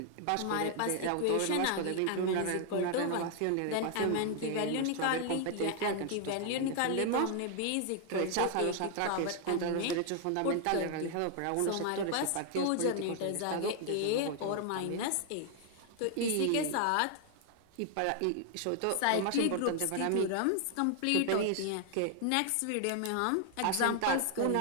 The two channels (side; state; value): both; different; correlation 0.00